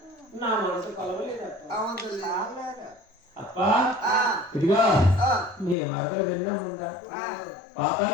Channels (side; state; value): right; drops out; at 5.8 s